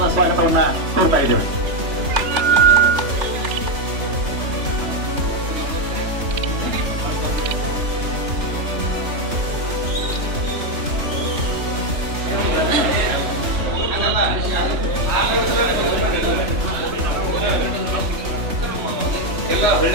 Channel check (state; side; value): late; left; 3.3 ms